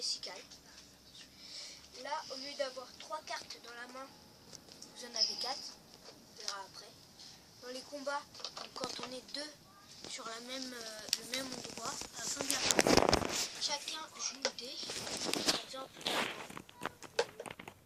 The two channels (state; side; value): identical; both; correlation 1.00